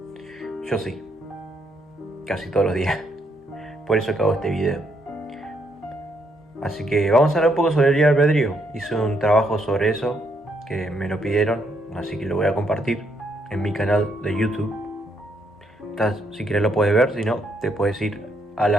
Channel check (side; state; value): both; normal; correlation 0.75